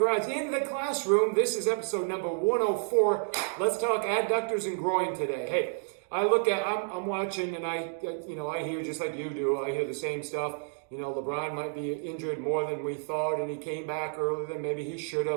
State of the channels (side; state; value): left; silent; 56 dB below the other